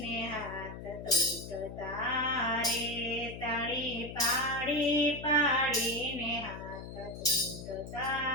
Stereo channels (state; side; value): noise; left; hum, 11 dB below the sound